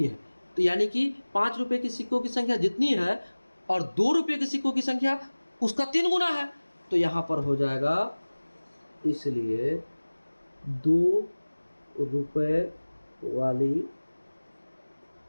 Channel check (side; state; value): both; inverted; correlation -1.00